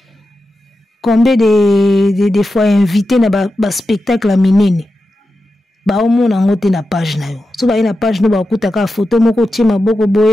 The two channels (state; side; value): normal; both; correlation 0.91